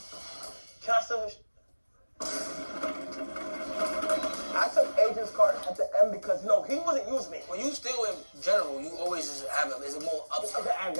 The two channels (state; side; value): inverted; both; correlation -1.00